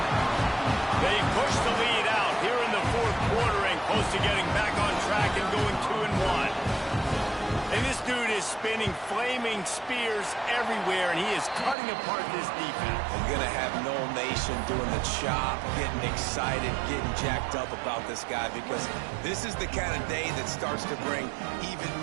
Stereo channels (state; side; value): drops out; left; at 11.8 s